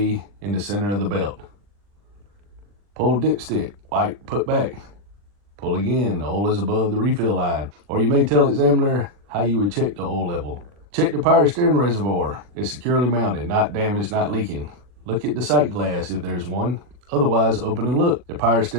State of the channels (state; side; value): late; left; 40 ms